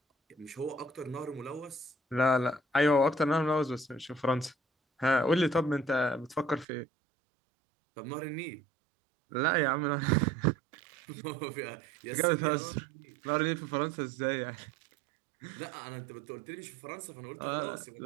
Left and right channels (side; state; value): left; drops out; at 6.7 s